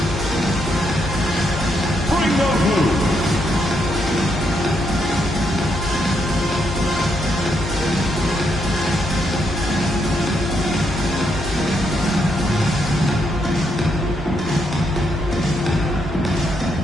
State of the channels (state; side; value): normal; both; correlation 0.78